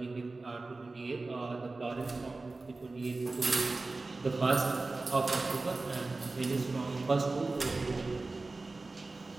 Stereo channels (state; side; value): quieter; left; 3.4 dB